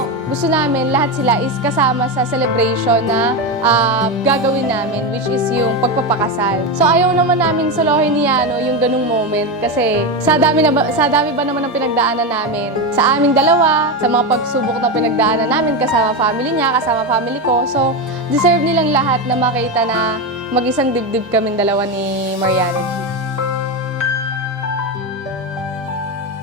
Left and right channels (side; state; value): both; normal; correlation 0.14